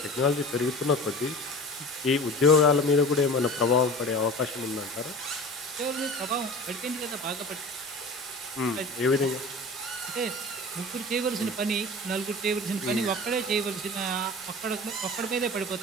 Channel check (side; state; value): both; normal; correlation 0.37